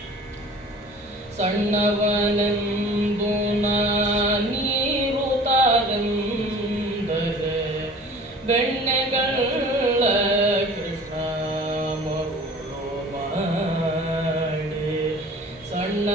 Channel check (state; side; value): normal; both; correlation 0.45